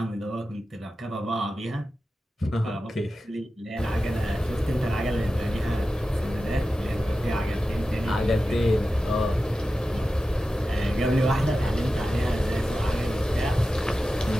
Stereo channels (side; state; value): both; normal; correlation 0.93